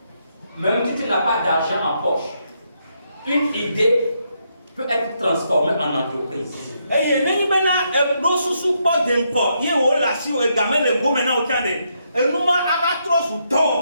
même si tu n'as pas d'argent en poche, une idée peut être transformée en entreprise.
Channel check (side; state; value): both; inverted; correlation -0.78